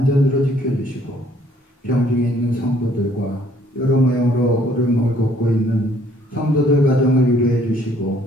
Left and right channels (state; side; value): normal; both; correlation 0.62